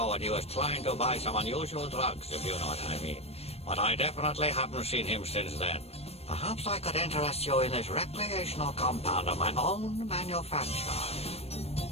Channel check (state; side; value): late; right; 0.29 ms